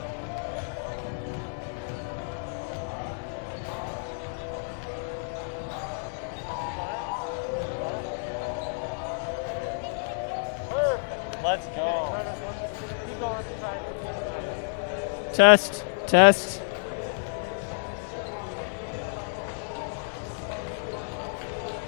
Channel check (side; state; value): right; silent; digital silence